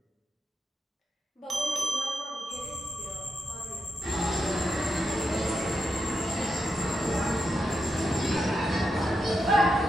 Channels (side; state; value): both; normal; correlation 0.85